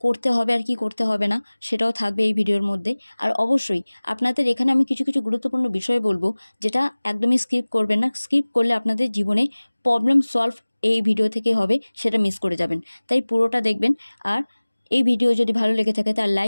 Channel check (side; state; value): both; inverted; correlation -1.00